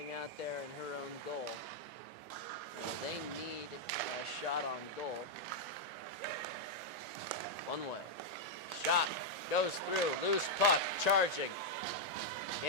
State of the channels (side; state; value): both; normal; correlation -0.03